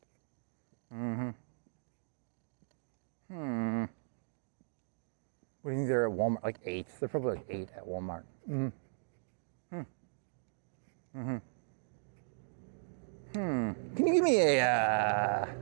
What do you think they're at Walmart? Like 8. They're probably like 8 at Walmart. Can you give me a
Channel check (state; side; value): silent; left; digital silence